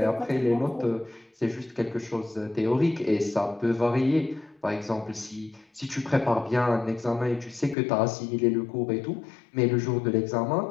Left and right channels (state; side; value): drops out; right; at 7.8 s